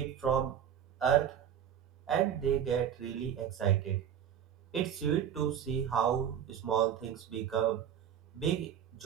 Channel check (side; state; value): left; quieter; 9.2 dB